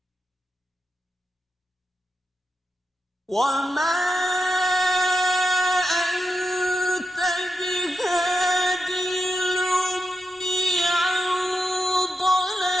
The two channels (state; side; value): normal; both; correlation 0.88